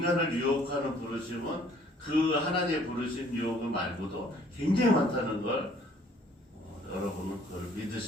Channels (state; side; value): normal; both; correlation 0.59